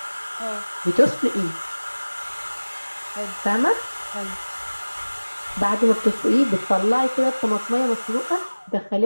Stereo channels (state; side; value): inverted; both; correlation -1.00